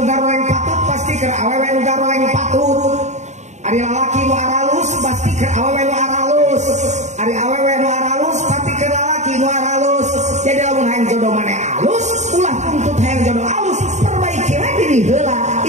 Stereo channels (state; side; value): late; left; 0.34 ms